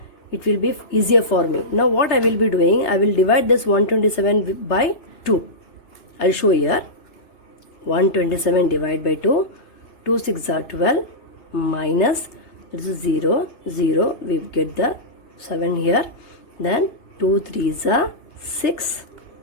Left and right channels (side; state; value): right; late; 2.9 ms